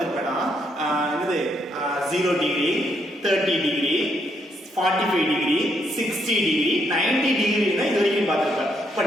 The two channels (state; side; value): normal; both; correlation 0.75